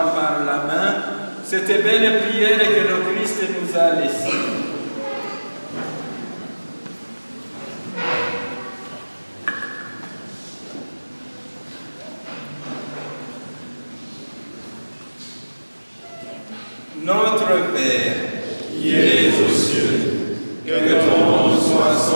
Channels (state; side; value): inverted; both; correlation -1.00